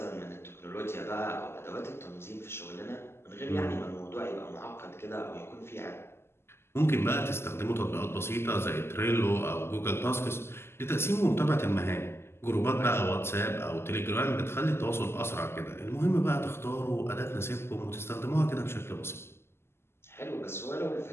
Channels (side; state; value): right; late; 0.12 ms